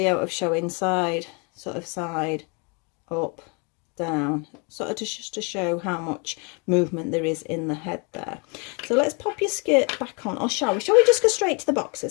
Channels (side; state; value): right; quieter; 33.2 dB